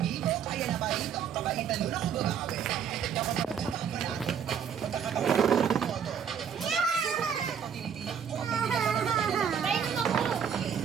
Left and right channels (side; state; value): left; quieter; 7.7 dB